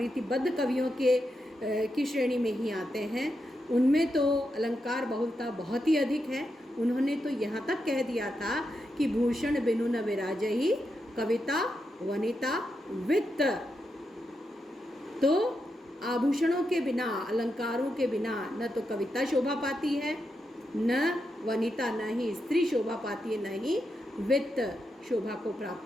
कवियों की श्रेणी में ही आते हैं, उनमें तो अलंकार बहुलता बहुत ही अधिक है। उन्होंने तो यहाँ तक कह दिया था कि भूषण बिनु न विराजहि कविता वनिता वित्त। तो आभूषणों के बिना, अलंकारों के बिना न तो कविता शोभा पाती है, न वनिता, न ही स्त्री शोभा पाती है, न ही वित्त शोभा को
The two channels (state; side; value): normal; both; correlation 0.85